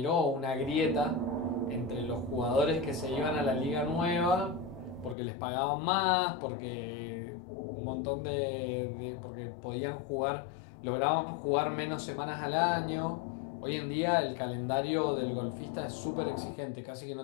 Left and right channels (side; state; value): right; drops out; at 5.2 s